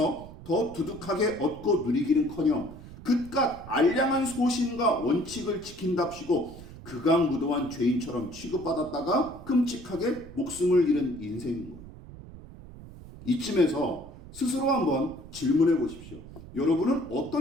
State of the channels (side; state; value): right; noise; rumble, 16 dB below the sound